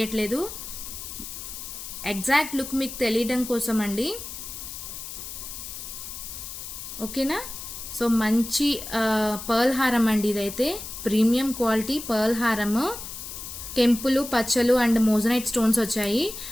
ఎగ్జాక్ట్ లుక్ మీకు తెలియడం కోసం అండి, ఓకేనా. సో మంచి పర్ల్ హారం అండి. ఇదైతే ప్రీమియం క్వాలిటీ పర్ల్ హారము. కెంపులు, పచ్చలు అండ్ మోజనైట్ స్టోన్స్ వచ్చాయి.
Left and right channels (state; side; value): noise; left; hiss, 9 dB below the sound